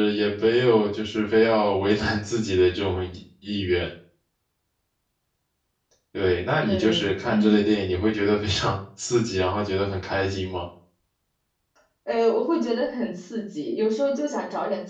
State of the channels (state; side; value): identical; both; correlation 1.00